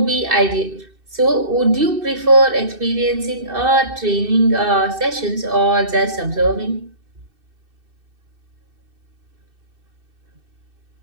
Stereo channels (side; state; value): left; late; 2.6 ms